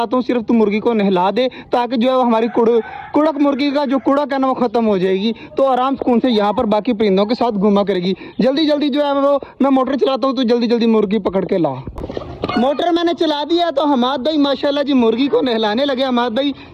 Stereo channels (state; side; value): identical; both; correlation 1.00